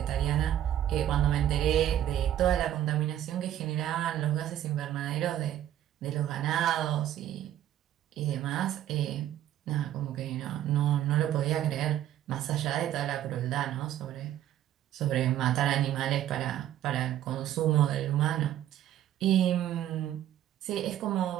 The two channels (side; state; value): left; quieter; 11.8 dB